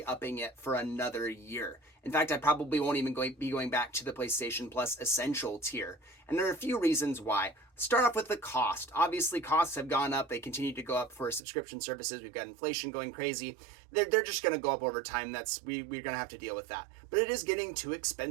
it for another year. In fact, I probably won't even be going back to the PlayStation Plus Essential tier. And there are a few reasons why. Start off with the cost. Obviously, costs have gone up. They continue to go up for subscription services. We've got inflation going crazy. They're just going to go up over time. We're going to have to deal with that. But it is getting too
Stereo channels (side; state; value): left; drops out; at 11.4 s